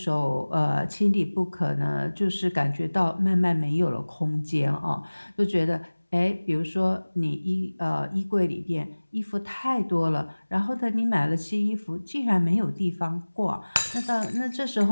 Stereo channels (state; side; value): inverted; both; correlation -1.00